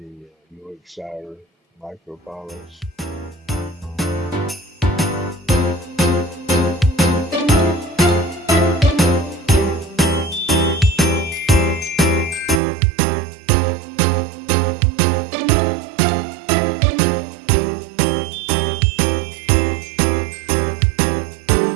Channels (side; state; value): left; drops out; at 12.6 s